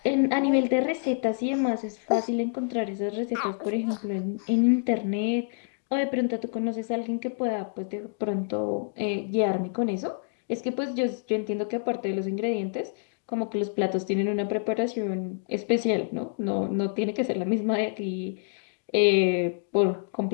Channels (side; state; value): right; silent; digital silence